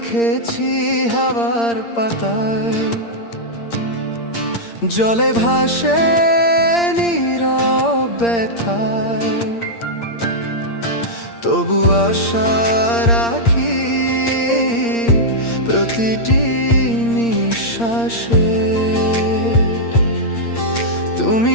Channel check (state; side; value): late; right; 8.6 ms